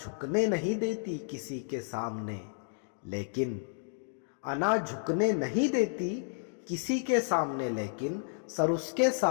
نہیں دیتی کسی کے سامنے، لیکن انا جھکنے نہیں دیتی کسی کے سامنے لیکن سر اس کے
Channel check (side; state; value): right; silent; digital silence